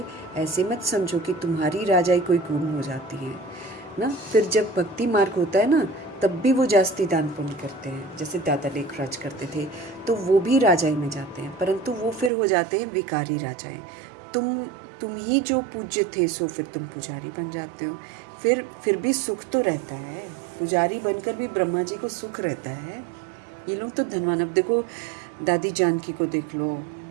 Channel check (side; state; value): left; drops out; at 12.3 s